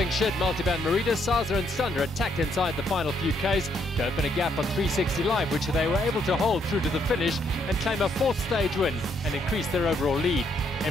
shed Multivan Merida, Saza and Sunder attacked inside the final few Ks to open a gap on 360 Live, which they were able to hold through to the finish and claim a fourth stage win and increase their overall lead.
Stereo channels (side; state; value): both; normal; correlation 0.72